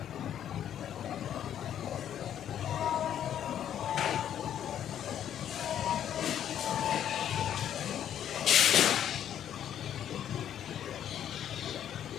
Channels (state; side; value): quieter; right; 10.1 dB